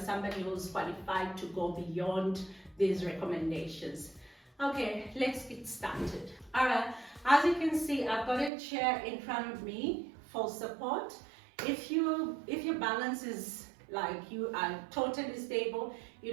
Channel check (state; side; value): drops out; left; at 8.5 s